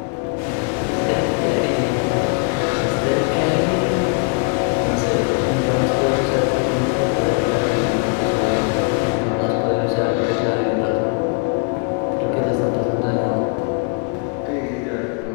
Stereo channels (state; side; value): quieter; right; 35.1 dB